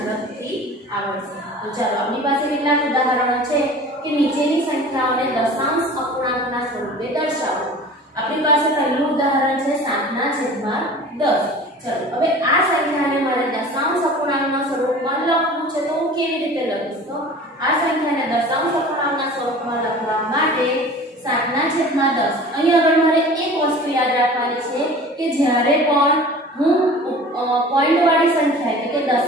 આવડશે. તો ચાલો આપણી પાસે કેટલાક ઉદાહરણો છે કે નીચેની સંખ્યાઓને દશાંશ અપૂર્ણાંકના સ્વરૂપે દર્શાવો. આપણી પાસે પહેલું ઉદાહરણ છે 7/10. ચલો હવે આ સંખ્યાને મારે દશાંશ અપૂર્ણાંકના સ્વરૂપમાં લખવું છે તો હું કેવી રીતે લખીશ? તો આ સંખ્યાને દશાંશ અપૂર્ણાંકના સ્વરૂપમાં લખવા માટે 7/10. અહીં આગળ મારે એક વસ્તુ યાદ રાખવાની છે કે જ્યારે પણ હું પોઈન્ટવાળી સંખ્યા એટલે કે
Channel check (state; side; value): normal; both; correlation 0.41